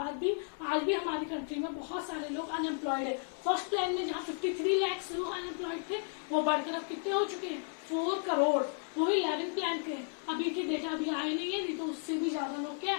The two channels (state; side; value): silent; right; 55 dB below the other